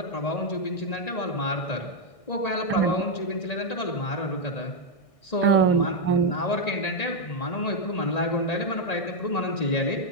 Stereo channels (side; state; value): right; late; 1.6 ms